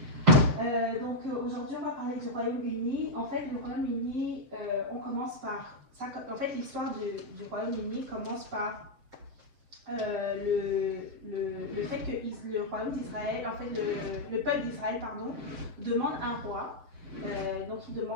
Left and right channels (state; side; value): late; left; 7.5 ms